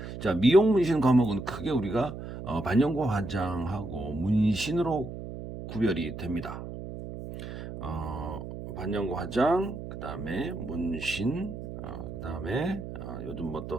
자, 미용 문신 과목은 크게 우리가 반영고 화장하고 문신으로 구별이 됩니다. 반영고 화장, 그 다음에 문신, 그 다음에 요즘 뭐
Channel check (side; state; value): right; noise; hum, 9 dB below the sound